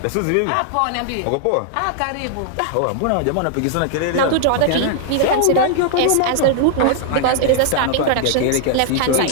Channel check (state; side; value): different; both; correlation -0.01